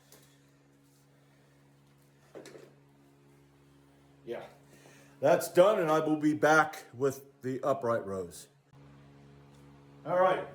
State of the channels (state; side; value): identical; both; correlation 1.00